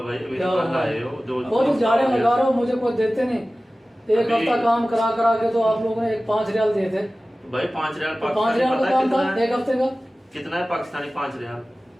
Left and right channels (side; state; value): both; normal; correlation 0.97